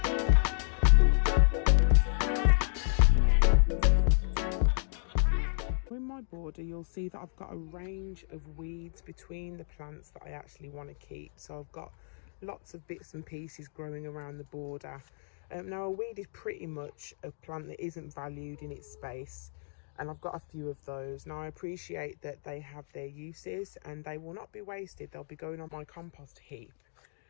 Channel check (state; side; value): silent; right; digital silence